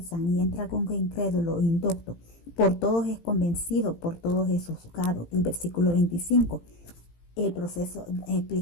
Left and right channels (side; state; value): right; late; 18 ms